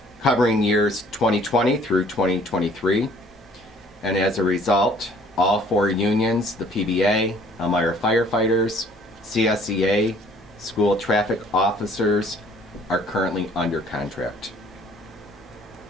covering years 2020 through 2023. And as a result, all 4 unions, the PBA, Elmira firefighters, CSEA, school traffic officers, are currently under contract.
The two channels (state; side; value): normal; both; correlation 0.57